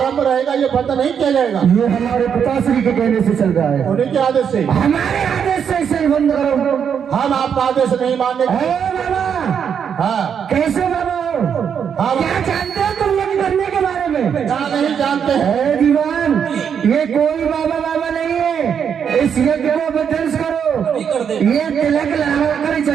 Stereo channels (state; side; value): quieter; left; 7.6 dB